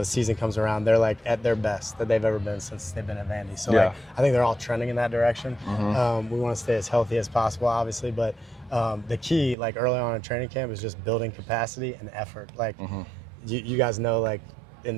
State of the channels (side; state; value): left; drops out; at 9.6 s